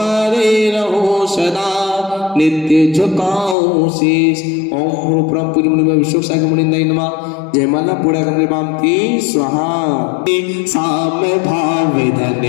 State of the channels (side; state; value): right; drops out; at 3.6 s